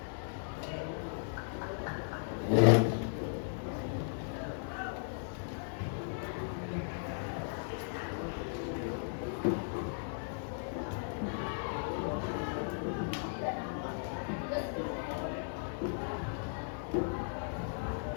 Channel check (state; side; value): silent; right; digital silence